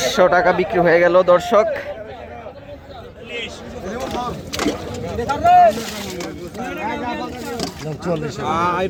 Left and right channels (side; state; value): both; identical; correlation 1.00